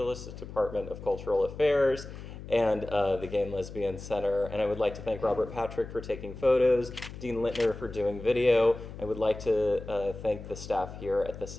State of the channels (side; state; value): left; noise; hum, 12 dB below the sound